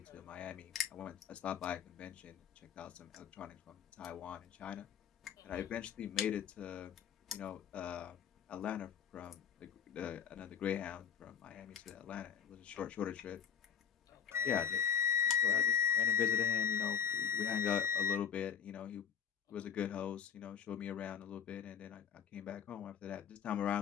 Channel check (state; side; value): quieter; right; 7.8 dB